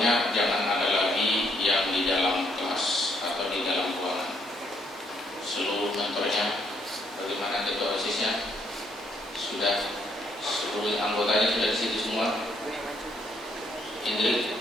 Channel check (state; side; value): normal; both; correlation 0.71